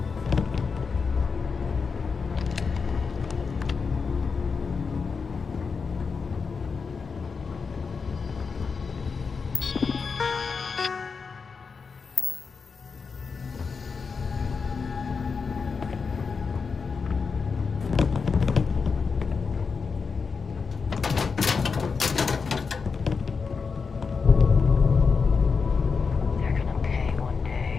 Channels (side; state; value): right; quieter; 5.2 dB